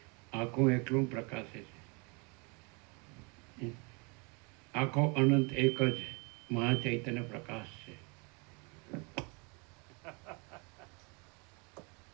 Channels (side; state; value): left; quieter; 31.4 dB